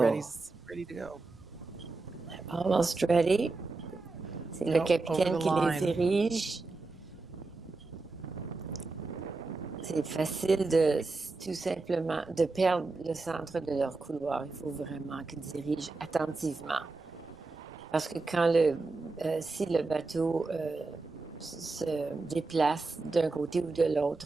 to go. Almost ready. C'est le capitaine qui les dirige. C'est facile tout simplement de perdre le centre de leur couloir. Il faut vraiment qu'ils dirigent attentivement. Parce que si le bateau se déplace d'un côté ou de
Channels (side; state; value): left; quieter; 3.6 dB